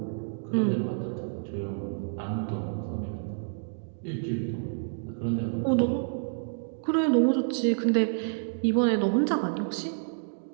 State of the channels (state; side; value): silent; left; digital silence